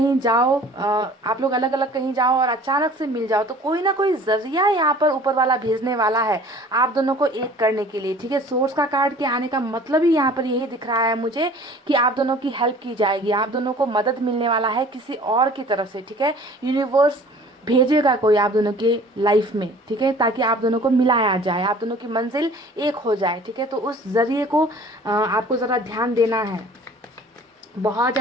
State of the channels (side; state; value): both; normal; correlation 0.48